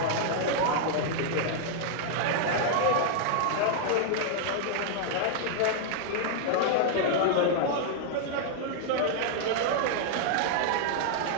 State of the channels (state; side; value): different; both; correlation -0.01